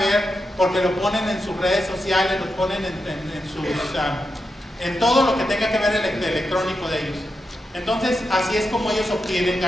porque lo ponen en sus redes sociales, lo ponen en todo lo que tenga que ver el electrónico de ellos. Entonces, así es como ellos obtienen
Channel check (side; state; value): both; normal; correlation 0.87